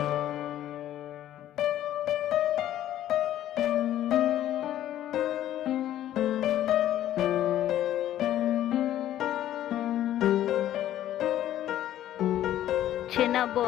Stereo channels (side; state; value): right; quieter; 12.4 dB